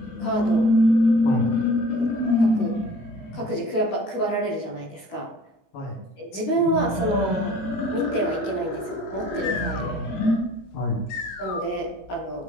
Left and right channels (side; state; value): right; late; 16 ms